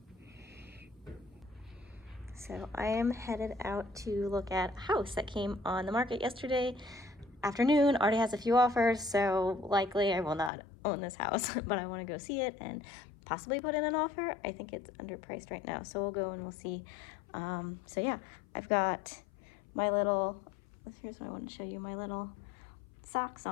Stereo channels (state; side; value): drops out; right; at 10.5 s